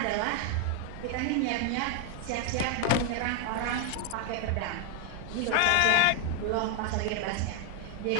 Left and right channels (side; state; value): both; different; correlation 0.01